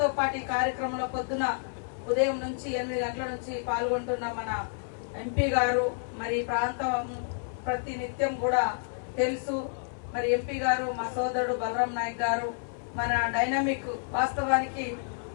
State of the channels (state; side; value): silent; right; 58 dB below the other